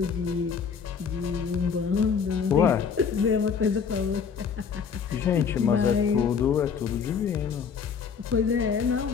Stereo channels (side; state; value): right; quieter; 6.5 dB